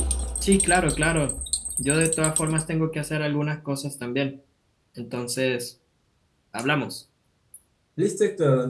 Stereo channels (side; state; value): both; identical; correlation 1.00